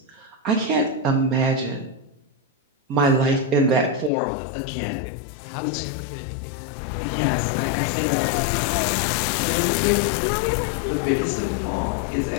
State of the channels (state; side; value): drops out; right; at 4.1 s